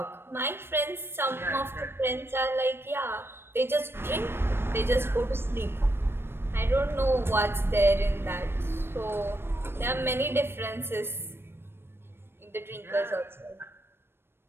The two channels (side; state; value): left; late; 0.11 ms